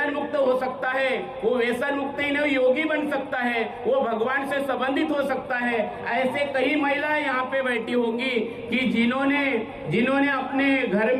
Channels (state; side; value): identical; both; correlation 1.00